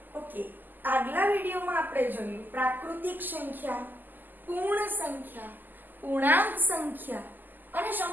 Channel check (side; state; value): left; late; 0.088 ms